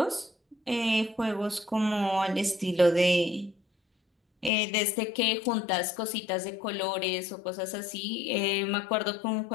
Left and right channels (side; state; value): right; drops out; at 4.5 s